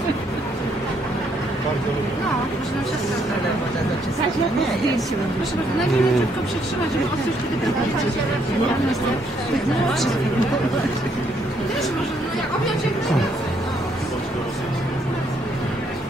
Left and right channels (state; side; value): normal; both; correlation 0.71